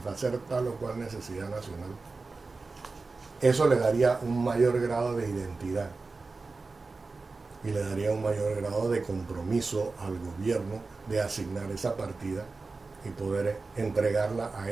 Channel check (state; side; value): quieter; left; 3.9 dB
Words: tal o cual necesidad nacional? Eso le daría un mayor grado de identidad y le daría un mayor grado de compromiso al gobierno de asignar esa partida y poder entregarla a